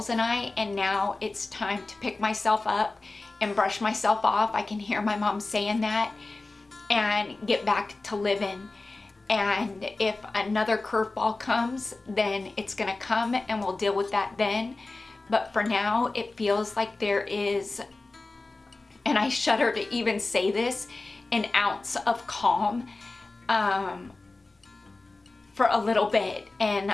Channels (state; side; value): quieter; right; 3.3 dB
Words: and I, and now it's time to pick myself up and brush myself off. I can hear my mom saying that, and get back to living. And if another curveball comes, then it's gonna come and we'll deal with that then. But for now, it feels like there is, and I shudder to even say this, an ounce of calm for a little bit, and